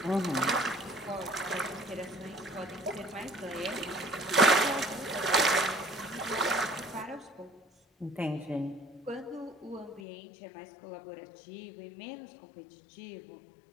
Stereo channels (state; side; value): drops out; right; at 10.0 s